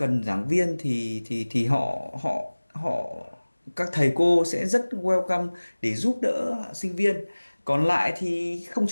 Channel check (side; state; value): both; inverted; correlation -1.00